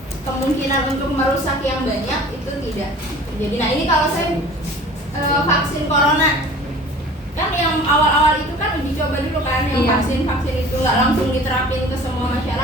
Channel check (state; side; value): normal; both; correlation 0.44